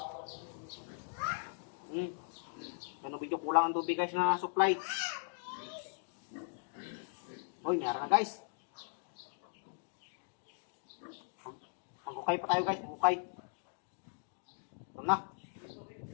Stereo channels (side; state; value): right; silent; digital silence